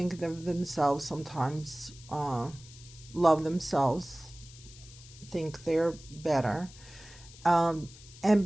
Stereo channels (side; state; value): left; noise; hiss, 20 dB below the sound